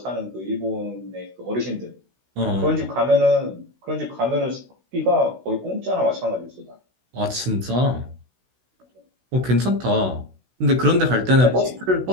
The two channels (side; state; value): left; late; 16 ms